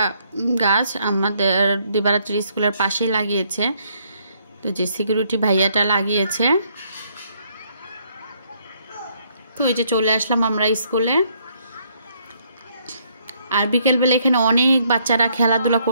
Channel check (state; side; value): inverted; both; correlation -0.69